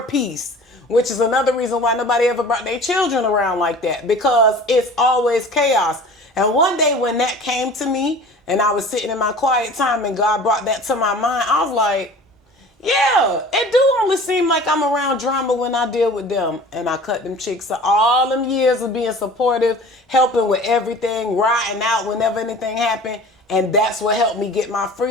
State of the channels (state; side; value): normal; both; correlation 0.42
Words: peace, which is another reason why nobody ever brought their children around like that, because it's always chaos. And one day when that came to me, and I was sitting in my quiet time, and God brought that to my mind, I was like, yeah, it do only seem like I'm around drama when I deal with them. And I cut them chicks. So all them years of being supportive, helping with everything, riding out whenever anything happened. And that's what helped me get my